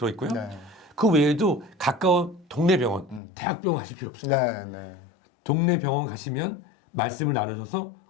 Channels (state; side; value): drops out; right; at 3.2 s